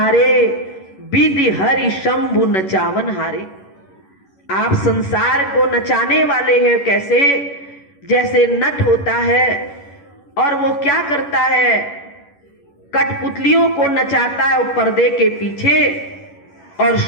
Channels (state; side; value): late; right; 11 ms